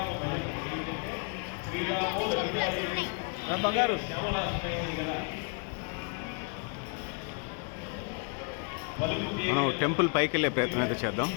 మనం టెంపుల్ పైకి వెళ్ళే ప్రయత్నం అయితే చేద్దాం.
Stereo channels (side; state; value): right; quieter; 37.1 dB